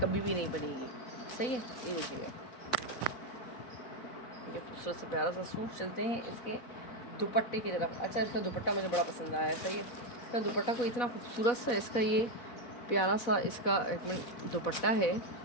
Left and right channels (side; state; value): right; late; 4.1 ms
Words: भी नहीं बनेगी। सही है। ये देखिएगा ये खूबसूरत से प्यारा सा सूट। चलते हैं इसके दुपट्टे की तरफ। अच्छा, इसका दुपट्टा मुझे बड़ा पसंद आया है। सही है। इसका दुपट्टा को इतना खूबसूरत सा इसका ये प्यारा सा इसका एक मिनट दुपट्टा है,